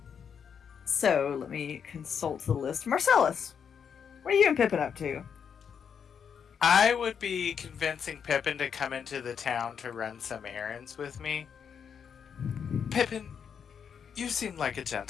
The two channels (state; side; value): quieter; right; 7.3 dB